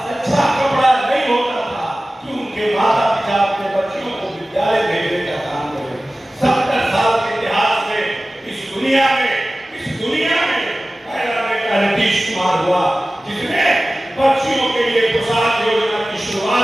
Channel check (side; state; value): both; normal; correlation 0.96